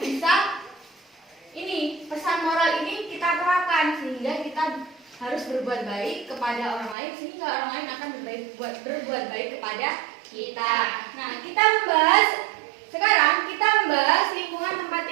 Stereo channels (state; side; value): drops out; left; at 7.0 s